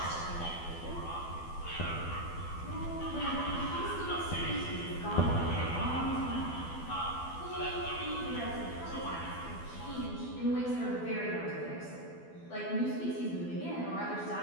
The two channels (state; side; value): late; right; 12 ms